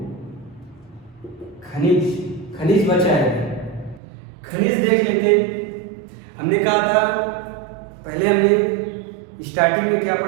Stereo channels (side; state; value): left; drops out; at 4.0 s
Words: खनिज। खनिज बचा है, खनिज देख लेते। हमने कहा था पहले, हमने स्टार्टिंग में क्या